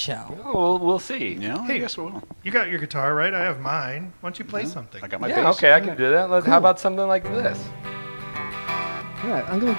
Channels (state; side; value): inverted; both; correlation -1.00